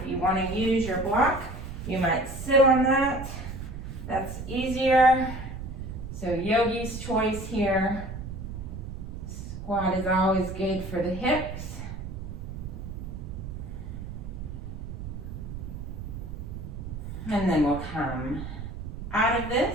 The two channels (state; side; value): noise; right; rumble, 8 dB below the sound